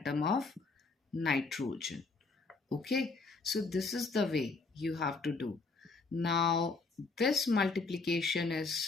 of nitrogen. Okay, so this is the way you have to do. Now this multiplication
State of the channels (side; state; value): right; quieter; 4.0 dB